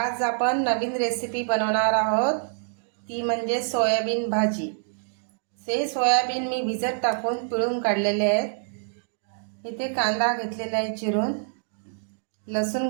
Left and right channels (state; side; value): silent; left; digital silence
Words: आपण नवीन रेसिपी बनवणार आहोत. ती म्हणजे सोयाबीन भाजी. हे सोयाबीन मी भिजत टाकून पिळून काढलेले आहेत. इथे कांदा घेतलेला आहे चिरून, लसूण